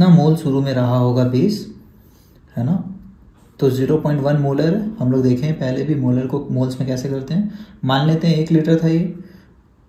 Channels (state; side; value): identical; both; correlation 1.00